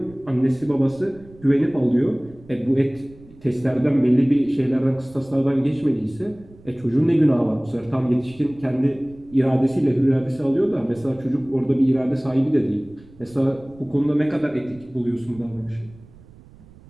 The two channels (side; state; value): right; noise; rumble, 23 dB below the sound